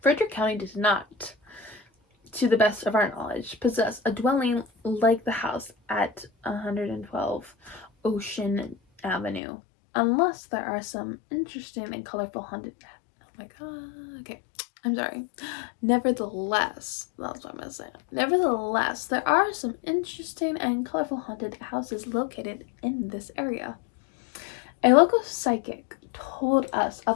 Frederick County does not, to the best of our knowledge, possess a dwelling like the house at 112 Ocean Avenue, unless there are some interesting and colorful haunted... Oh my god, okay, I'm sorry. Nevertheless, that's what I'm gonna say. Nevertheless, there are some interesting and colorful haunted houses located in this area. A local psychic told us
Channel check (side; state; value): right; drops out; at 9.4 s